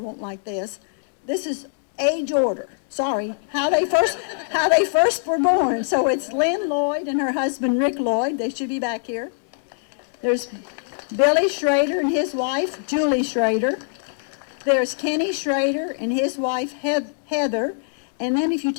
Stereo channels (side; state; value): right; silent; digital silence